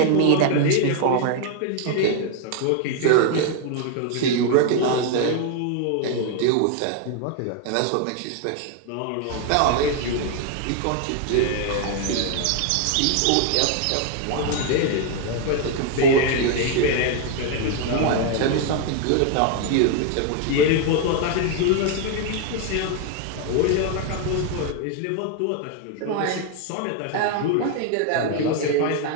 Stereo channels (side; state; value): both; different; correlation 0.00